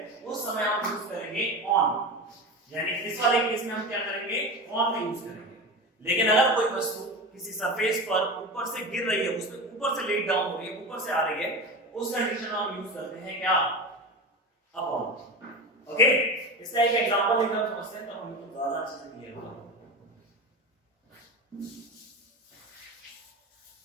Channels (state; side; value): normal; both; correlation 0.26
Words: उस समय हम यूज करेंगे ऑन। यानी इस वाले केस में हम क्या करेंगे? ऑन का यूज करेंगे। लेकिन अगर कोई वस्तु किसी सरफेस पर ऊपर से गिर रही है, उसमें ऊपर से लेट डाउन हो रही है, ऊपर से आ रही है, उस कंडीशन में हम यूज करते हैं क्या? अपॉन। ओके, इसका एक एग्जांपल लेकर समझते हैं, तो हमको ज्यादा अच्छे से क्लियर होगा।